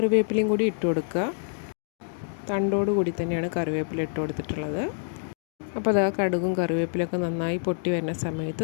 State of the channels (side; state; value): right; silent; digital silence